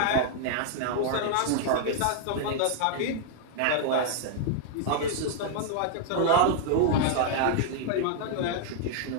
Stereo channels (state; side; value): different; both; correlation -0.01